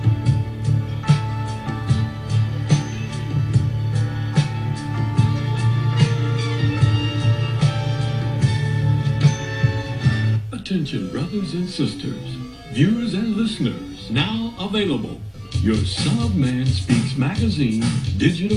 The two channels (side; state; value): both; identical; correlation 1.00